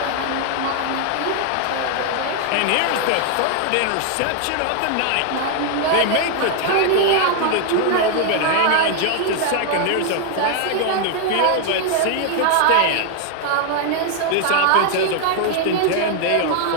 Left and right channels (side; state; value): both; different; correlation 0.00